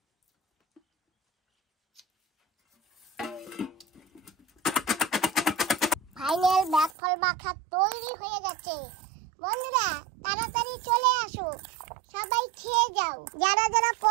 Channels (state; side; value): drops out; left; at 6.9 s